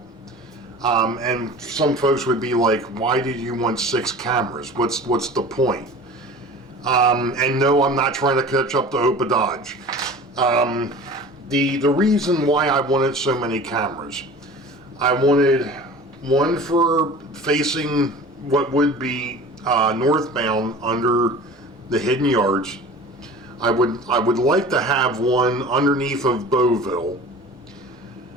And some folks would be like, why did you want 6 cameras? What's the point? And no, I'm not trying to catch up to Opa Dodge. The reason why I wanted so many cameras, I wanted one for facing what would be northbound under the hidden yards. I would like to have one underneath of Boeville.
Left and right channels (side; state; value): both; normal; correlation 0.40